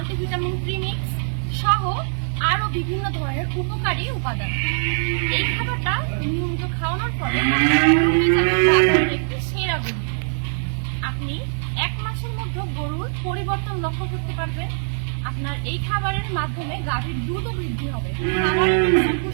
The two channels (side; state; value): left; silent; digital silence